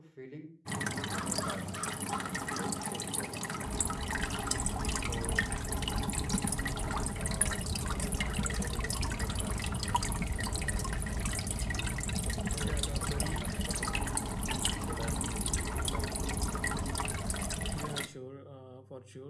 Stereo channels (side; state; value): both; identical; correlation 1.00